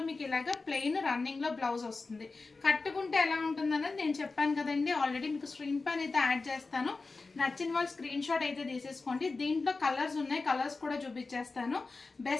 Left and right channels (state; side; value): quieter; right; 3.9 dB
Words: మీకు ఇలాగ ప్లెయిన్ రన్నింగ్ లో బ్లౌజ్ వస్తుంది. కట్టుకుంటే ఎలా ఉంటుంది అన్నది నేను చెప్పాను కదండి ఆల్రెడీ. మీకు స్క్రీన్ పైన అయితే యాడ్ చేస్తాను. నచ్చిన వాళ్ళు స్క్రీన్ షాట్ అయితే తీసేసుకోండి. దీంట్లో కలర్స్ ఉన్నాయి, కలర్స్ కూడా చూపించేస్తాను.